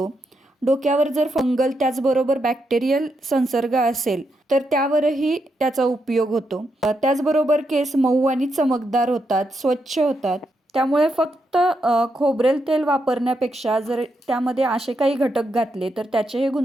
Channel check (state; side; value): normal; both; correlation 0.82